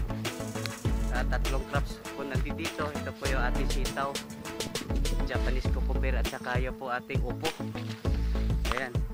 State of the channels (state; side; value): identical; both; correlation 1.00